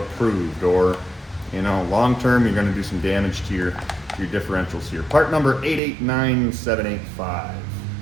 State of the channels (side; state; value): left; drops out; at 5.8 s